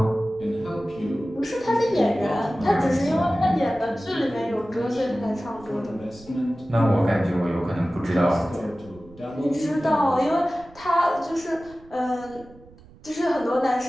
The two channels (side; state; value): right; noise; rumble, 23 dB below the sound